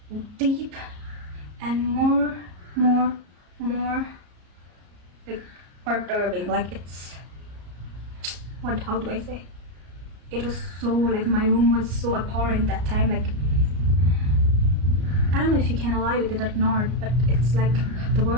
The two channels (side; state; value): left; late; 33 ms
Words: deep and more like perturbing. Like, it's how do I say? It was so like, my room was so abhorrent that time. Like, I don't know if you can alive with it or not, but it's like the